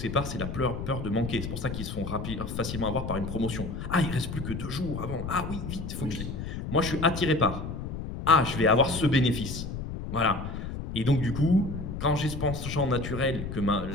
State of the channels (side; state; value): left; noise; rumble, 6 dB below the sound